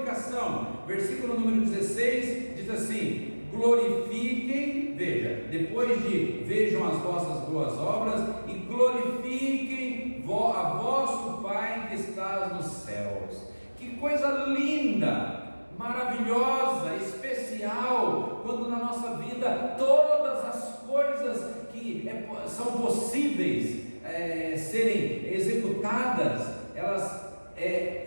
Versículo número 16 diz assim: glorifiquem, veja, depois de vejam as vossas boas obras, e glorifiquem a vosso Pai que está nos céus. Que coisa linda, maravilhosa, especial, quando na nossa vida todas as coisas que são possíveis serem executadas, elas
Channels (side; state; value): both; inverted; correlation -1.00